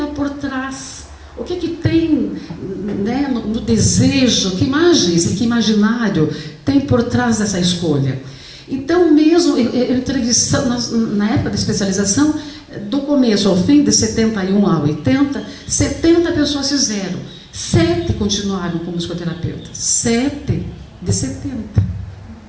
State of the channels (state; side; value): identical; both; correlation 1.00